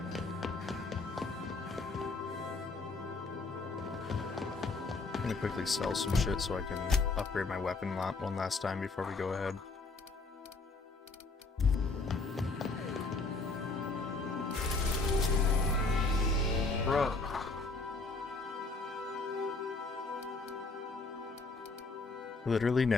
I'm gonna quickly sell some shit so I can upgrade my weapon one last time before we go ahead. Bro. Literally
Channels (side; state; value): right; quieter; 3.7 dB